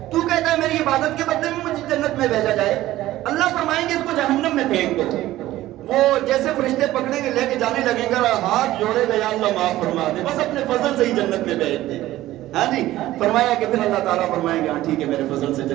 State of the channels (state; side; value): quieter; left; 15.4 dB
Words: تو کہتا ہے میری عبادت کے بدلے میں مجھے جنت میں بھیجا جائے. اللہ فرمائیں گے اس کو جہنم میں پھینک دو. وہ جیسے فرشتے پکڑیں گے لے کے جانے لگیں گے, ہاتھ جوڑے گا یا اللہ معاف فرما دے, بس اپنے فضل سے ہی جنت میں بھیج دے. ہاں جی. فرمایا کہ پھر اللہ تعالیٰ فرمائیں گے ہاں ٹھیک ہے میرے فضل سے